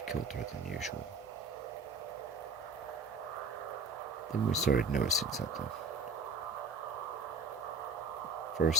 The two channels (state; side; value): quieter; left; 3.6 dB